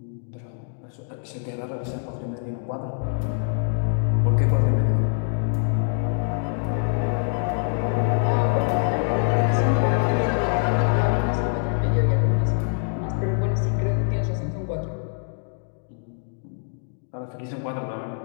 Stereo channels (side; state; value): right; silent; digital silence